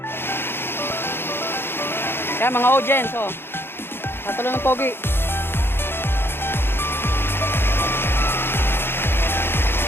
Kaya mga audience, oh. Natalo ng pogi.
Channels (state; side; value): late; right; 0.11 ms